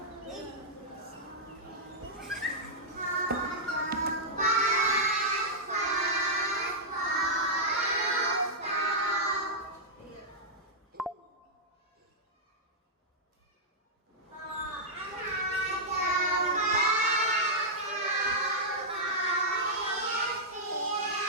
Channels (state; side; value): normal; both; correlation -0.09